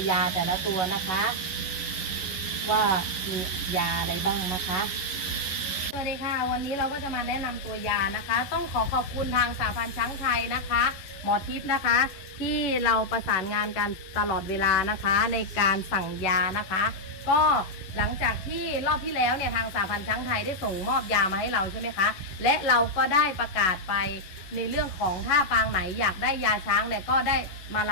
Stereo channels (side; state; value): right; late; 11 ms